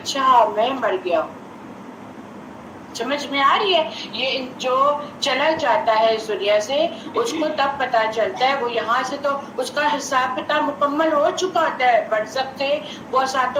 میں مر گیا ہوں. سمجھ میں آ رہی ہے؟ یہ جو چلا جاتا ہے اس دنیا سے اس کو تب پتا چلتا ہے، وہ یہاں سے تو اس کا حساب کتاب مکمل ہو چکا ہوتا ہے، برزخ سے وہ 7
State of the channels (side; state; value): both; identical; correlation 1.00